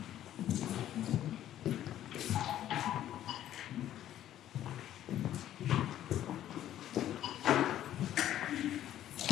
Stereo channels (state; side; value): quieter; right; 12.0 dB